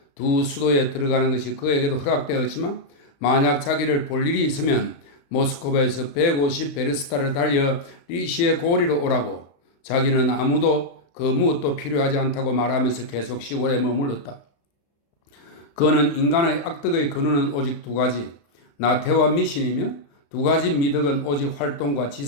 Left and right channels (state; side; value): late; right; 35 ms